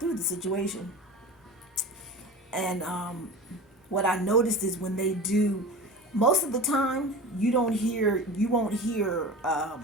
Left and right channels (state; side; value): normal; both; correlation 0.33